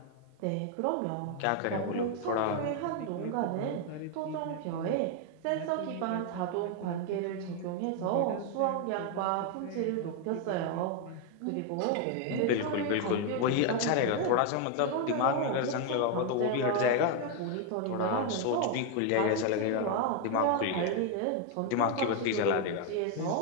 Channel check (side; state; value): both; different; correlation 0.01